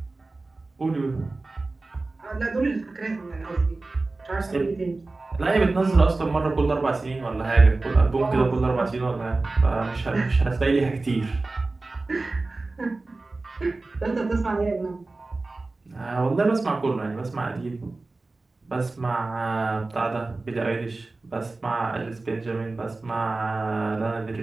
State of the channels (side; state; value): left; quieter; 3.4 dB